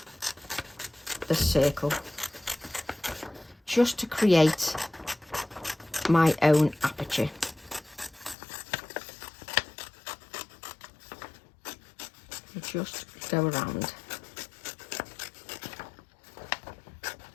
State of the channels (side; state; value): right; drops out; at 8.3 s